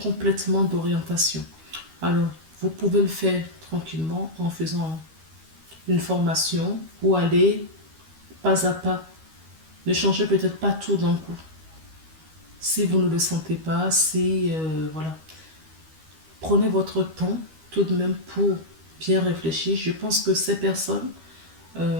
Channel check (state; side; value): late; left; 13 ms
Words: d'orientation. Alors, vous pouvez le faire tranquillement en faisant une formation ou aller pas à pas. Ne changez peut-être pas tout d'un coup. Si vous ne le sentez pas, voilà. Prenez votre temps tout de même pour bien réfléchir. Je pense que ces personnes